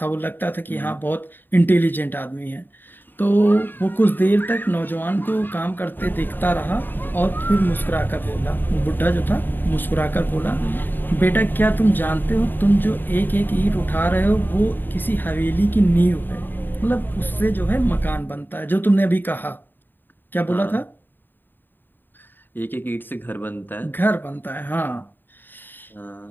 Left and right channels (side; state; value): right; late; 0.093 ms